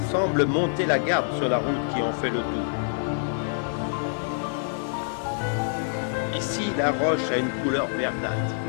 semble monter la garde sur la route qui en fait le tour. Ici, la roche a une couleur verdâtre.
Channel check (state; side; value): silent; right; 61 dB below the other